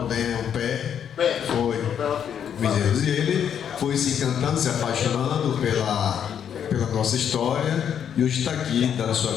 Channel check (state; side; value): quieter; right; 8.6 dB